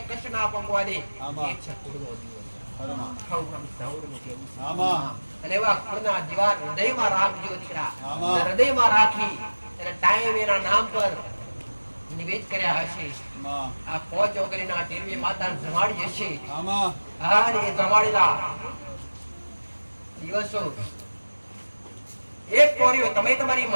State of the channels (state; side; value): inverted; both; correlation -1.00